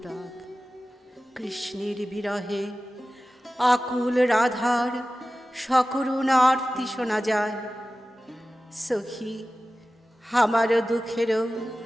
কৃষ্ণের বিরহে আকুল রাধার সকরুণ আরতি শোনা যায়। সখী আমার দুঃখেরও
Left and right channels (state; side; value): normal; both; correlation 0.95